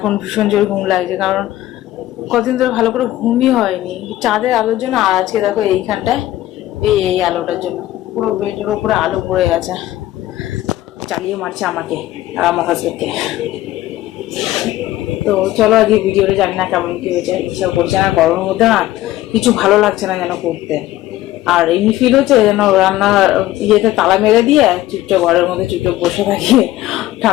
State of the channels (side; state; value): right; quieter; 15.2 dB